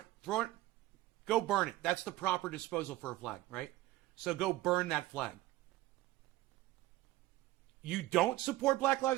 go burn it. That's the proper disposal for a flag, right? So go burn that flag. You don't support Black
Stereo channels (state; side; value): quieter; left; 16.8 dB